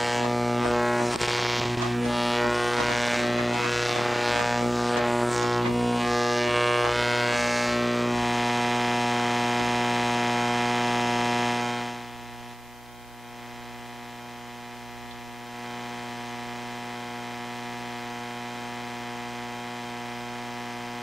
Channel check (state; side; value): normal; both; correlation 0.97